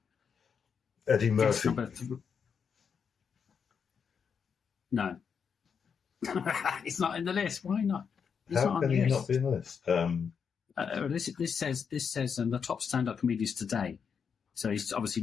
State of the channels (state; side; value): quieter; right; 6.6 dB